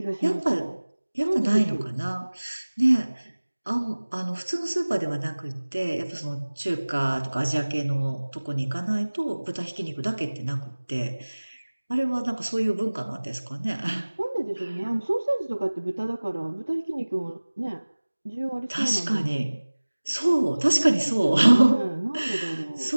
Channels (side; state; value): both; inverted; correlation -1.00